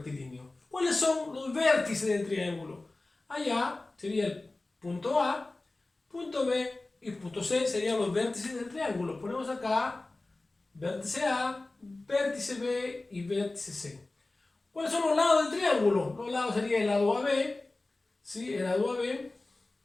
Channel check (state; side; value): quieter; right; 3.1 dB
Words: ¿Cuáles son los vértices del triángulo? Allá sería el punto A, punto B y punto C serían los vértices del triángulo. Ponemos acá vértice A, vértice B y vértice C. ¿Cuáles son los lados del triángulo? Los lados serían el lado AB, ¿sí? El lado AB.